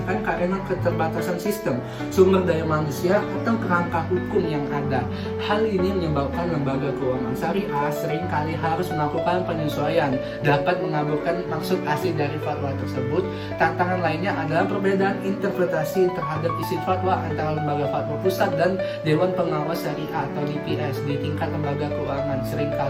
karena keterbatasan sistem, sumber daya manusia, atau kerangka hukum yang ada. Hal ini menyebabkan lembaga keuangan syariah seringkali harus melakukan penyesuaian, dapat mengabulkan maksud asli dari fatwa tersebut. Tantangan lainnya adalah perbedaan interpretasi terhadap isi fatwa antara lembaga fatwa pusat dan Dewan Pengawas Syariah atau DPS di tingkat lembaga keuangan.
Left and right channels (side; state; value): both; identical; correlation 1.00